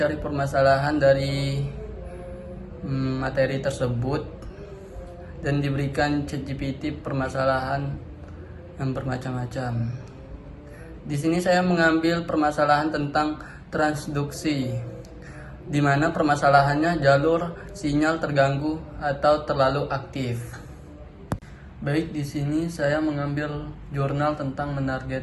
permasalahan dari materi tersebut dan diberikan ChatGPT permasalahan yang bermacam-macam. Di sini saya mengambil permasalahan tentang transduksi, di mana permasalahannya jalur sinyal terganggu atau terlalu aktif. Baik, di sini saya mengambil jurnal tentang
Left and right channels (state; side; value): identical; both; correlation 1.00